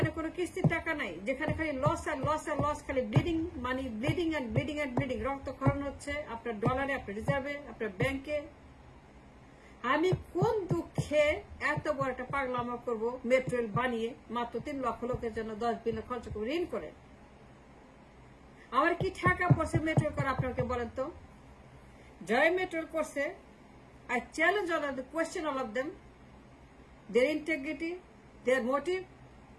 কোনো কিস্তির টাকা নাই, যেখানে খালি লস আর লস আর লস, খালি bleeding money, bleeding and bleeding and bleeding, রক্তক্ষরণ হচ্ছে আপনার ডলারে, আপনার রিজার্ভে, আপনার ব্যাংকে। আমি কোন দুঃখে এত বড় একটা পাগলামো করবো মেট্রো রেল বানিয়ে মাত্র 3 লক্ষ লোকের জন্য 10 বিলিয়ন খরচ করবো ঋণ করে? আমার কি টাকা পড়ছে মেট্রো রেল করে আপনাকে বলেন তো? জয় মেট্রো রেল করছে, I challenge all of them, question all of them, their integrity, their motive,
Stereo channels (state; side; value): identical; both; correlation 1.00